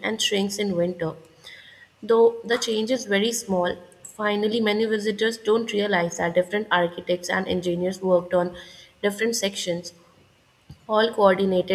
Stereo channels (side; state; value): both; identical; correlation 1.00